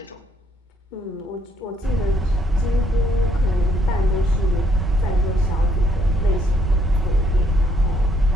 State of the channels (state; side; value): normal; both; correlation 0.69